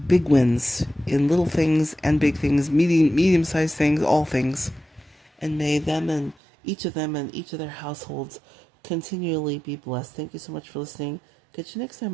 big wins in little things and big things, medium-sized things, all things. And may them and each of their households continually be blessed. Thank you so much for listening. Catch you next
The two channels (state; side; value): drops out; left; at 6.4 s